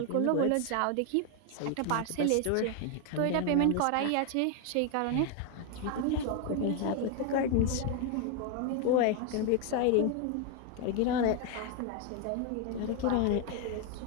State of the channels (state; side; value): different; both; correlation 0.01